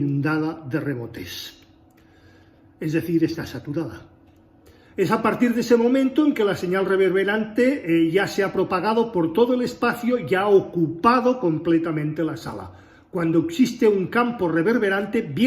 de rebotes. Es decir, está saturada. Es a partir de ese momento en que la señal reverberante ya se ha propagado por todo el espacio y ha ocupado completamente la sala, cuando existe un campo reverberante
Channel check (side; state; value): both; identical; correlation 1.00